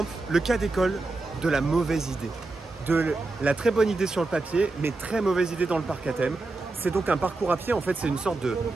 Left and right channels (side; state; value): left; quieter; 3.3 dB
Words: le cas d'école de la mauvaise idée. De la très bonne idée sur le papier, mais très mauvaise idée dans le parc à thème. C'est donc un parcours à pied, en fait c'est une sorte de